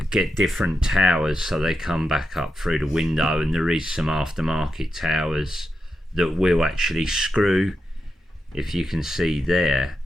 get different towers so they come back up through the window, and there is some aftermarket towers that will actually screw. If you can see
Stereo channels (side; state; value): both; normal; correlation 0.86